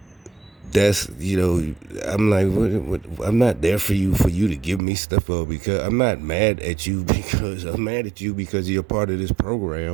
That's I'm like I'm not there for you to give me stuff up because I'm not mad at you because I'm mad at you because you're part of this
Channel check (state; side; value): drops out; left; at 4.8 s